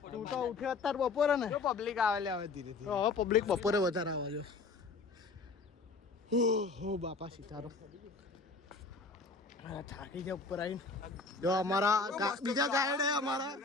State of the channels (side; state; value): right; quieter; 4.1 dB